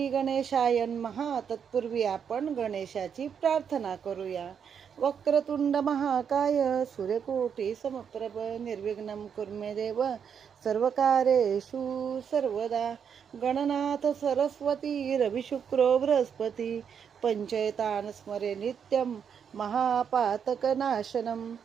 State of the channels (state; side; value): quieter; left; 7.4 dB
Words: गणेशाय नमः. तत्पूर्वी आपण गणेशाची प्रार्थना करूया. वक्रतुंड महाकाय सूर्यकोटी समप्रभ निर्विघ्नं कुर्मे देव सर्वकार्येषु सर्वदा. गणनाथ सरस्वती रविशुक्रो बृहस्पती पंचैतान स्मरे नित्यं महापातकनाशनम.